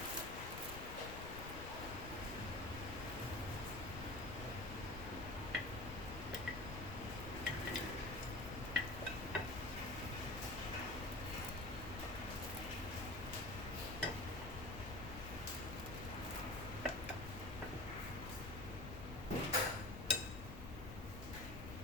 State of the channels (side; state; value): left; noise; rumble, 8 dB below the sound